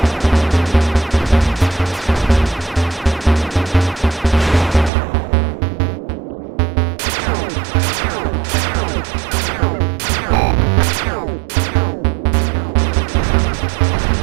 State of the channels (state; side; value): drops out; left; at 4.9 s